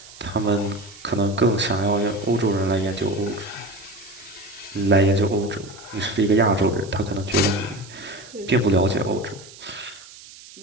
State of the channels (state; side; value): noise; right; hiss, 19 dB below the sound